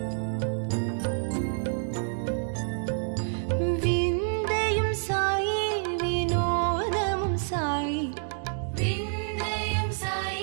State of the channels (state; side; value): silent; left; digital silence